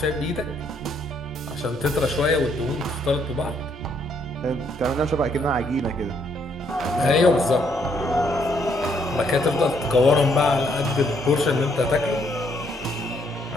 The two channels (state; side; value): normal; both; correlation 0.71